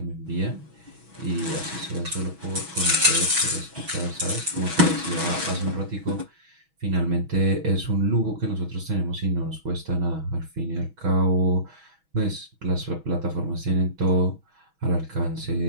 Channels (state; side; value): late; left; 6.2 ms